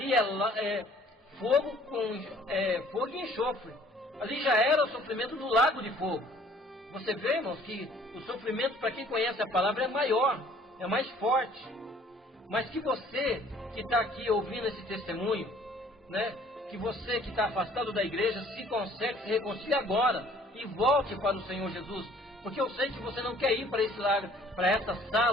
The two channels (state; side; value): normal; both; correlation 0.56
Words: é fogo e enxofre. Ali já era o sofrimento do lago de fogo. Você vê, irmãos, que o sofrimento, para quem conhece a palavra, é maior, é mais forte. Mas que você que está aqui ouvindo esse testemunho, né, que você que está afastado da igreja, se conserte, se reconcilie agora e volte para o Senhor Jesus. Porque eu sei que você não quer ir para esse lago, para essa